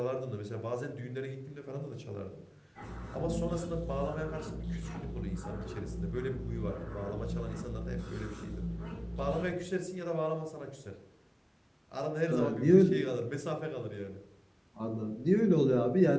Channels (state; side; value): identical; both; correlation 1.00